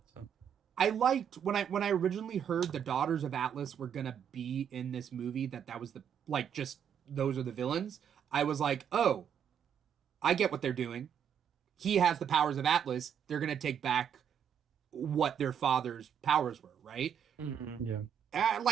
So I liked when I originally heard the Daughters of Atlas were gonna be in this movie, that was the just those are the villains. I was like, oh, I get what they're doing. He has the powers of Atlas. They're gonna take back what their father's powers were, right? Mm-hmm. Yeah.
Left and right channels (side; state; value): left; quieter; 8.4 dB